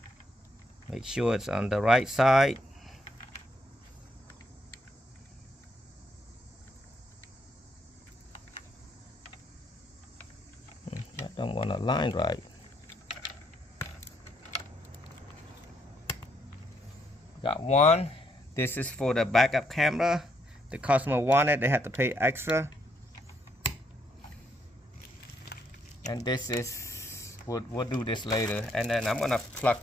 Make sure it's on the right side. I don't want to line right. Got one. This is for the backup camera. The customer wanted, they had to pay extra. And this is we'll do this later. And then I'm gonna plug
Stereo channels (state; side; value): normal; both; correlation 0.73